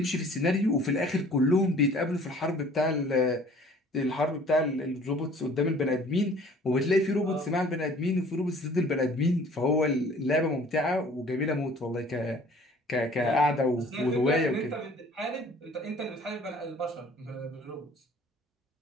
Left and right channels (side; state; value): both; normal; correlation 0.51